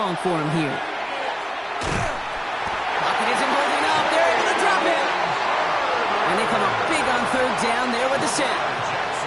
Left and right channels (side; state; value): both; identical; correlation 1.00